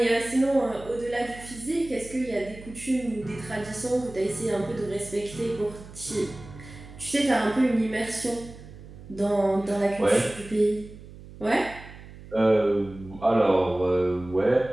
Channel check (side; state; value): right; noise; hum, 17 dB below the sound